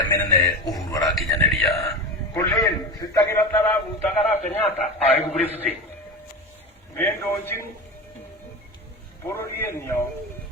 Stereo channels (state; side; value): normal; both; correlation 0.26